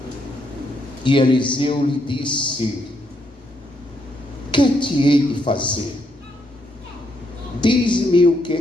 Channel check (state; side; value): normal; both; correlation 0.77